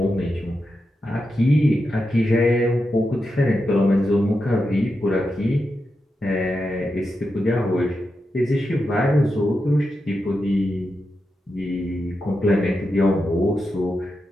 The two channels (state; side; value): normal; both; correlation 0.88